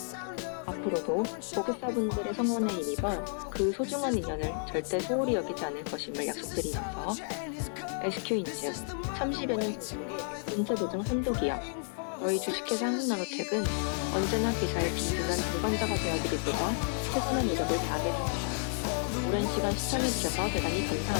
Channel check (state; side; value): silent; right; 57 dB below the other